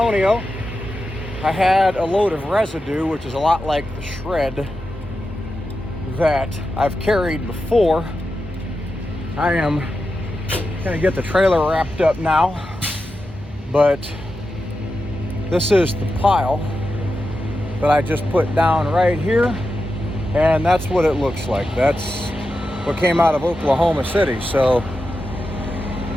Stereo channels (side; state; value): both; normal; correlation 0.89